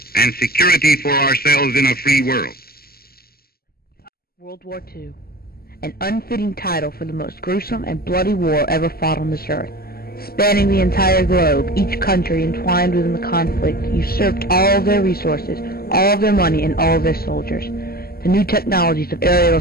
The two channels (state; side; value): late; right; 0.45 ms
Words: and security for ourselves in a free world. World War II, an unfitting title for the most gruesome and bloody war ever fought on this earth. Spanning the entire globe, each country entwined within the conflict usurped all of their resources, all of their money, and all of their soldiers. The new technologies of aerial